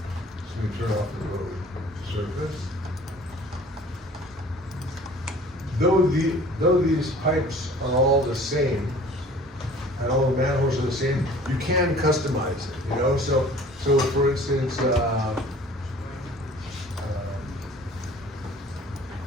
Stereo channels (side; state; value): both; normal; correlation 0.49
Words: me turn off the road surface. Though these pipes are all the same, and all the manholes are the same, you can customize it, you know? So for instance,